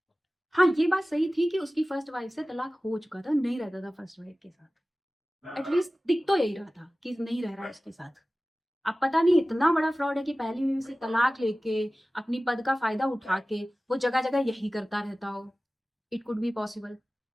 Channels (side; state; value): both; normal; correlation 0.97